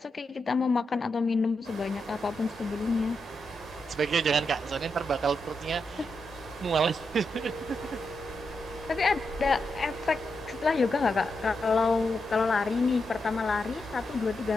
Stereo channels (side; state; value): both; normal; correlation 0.85